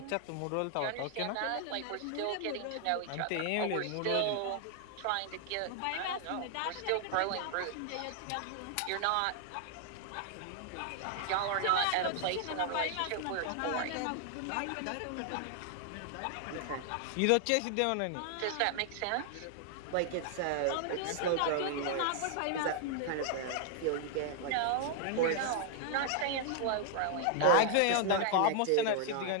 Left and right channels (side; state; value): both; different; correlation 0.00